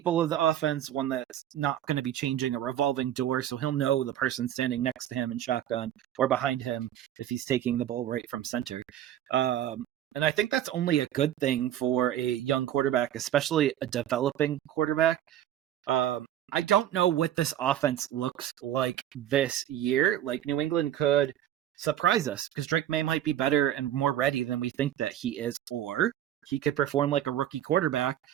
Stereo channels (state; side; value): quieter; left; 11.6 dB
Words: of the offense, one that's not going to be changing, a revolving door, so he'll know the person standing next to him in shotgun or behind him if he's taking the ball right from center. And I think that's only a good thing for a young quarterback, especially a developing quarterback. I don't know what this offense looks like this year. Like, New England could surprise us because Drake May might be better and more ready than we think that he is, or he could perform like a rookie quarterback,